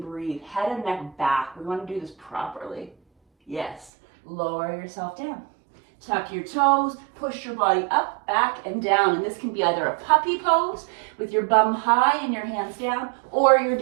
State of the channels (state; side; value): drops out; left; at 3.9 s